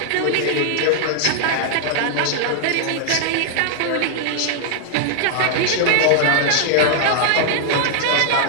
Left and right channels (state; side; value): different; both; correlation -0.01